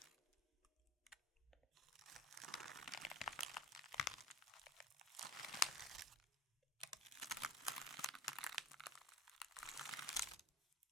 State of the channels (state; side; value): normal; both; correlation 0.44